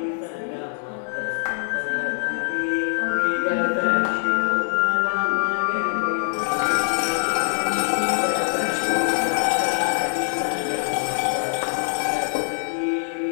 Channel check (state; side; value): silent; right; 63 dB below the other